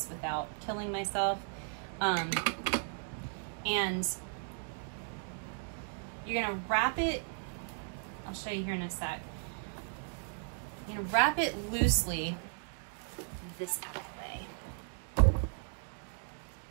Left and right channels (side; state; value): left; silent; 54 dB below the other